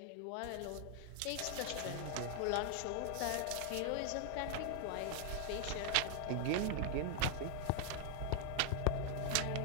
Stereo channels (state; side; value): different; both; correlation 0.00